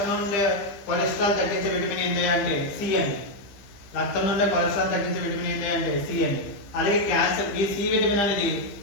ఉండే కొలెస్ట్రాల్ తగ్గించే విటమిన్ ఏంటి అంటే C అండి. రక్తంలో ఉండే కొలెస్ట్రాల్ తగ్గించే విటమిన్ ఏంటి అంటే C అండి. అలాగే క్యాన్సర్, ఈ C విటమిన్ అనేది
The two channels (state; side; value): late; right; 15 ms